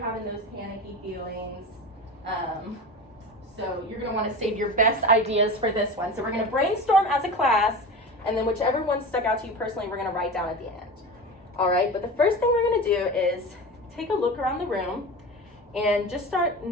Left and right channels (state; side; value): normal; both; correlation 0.29